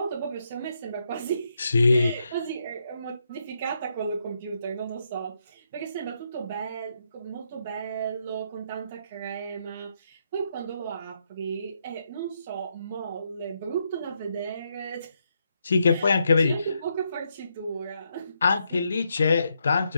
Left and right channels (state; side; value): inverted; both; correlation -0.79